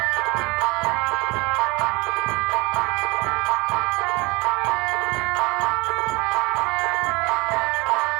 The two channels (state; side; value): quieter; left; 25.2 dB